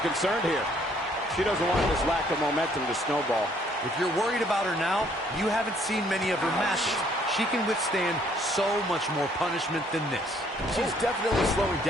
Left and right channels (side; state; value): both; normal; correlation 0.64